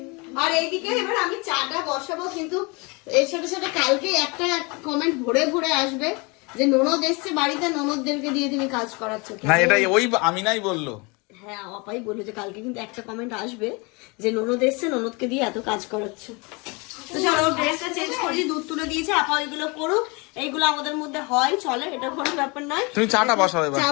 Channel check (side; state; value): right; quieter; 28.7 dB